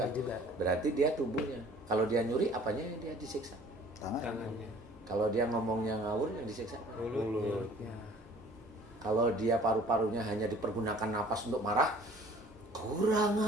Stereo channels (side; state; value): both; normal; correlation 0.51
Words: juga. Berarti dia tubuhnya. Kalau dia nyuri, apanya yang dia disiksa? Tangan. Kalau dia ngomongnya ngawur, yang disiksa apa? mulut. Ya. Kalau dia paru-parunya hanya dipergunakan napas untuk marah, kurang